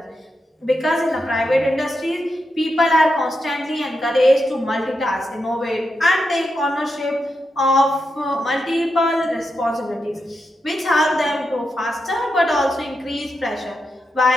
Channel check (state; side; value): normal; both; correlation 0.86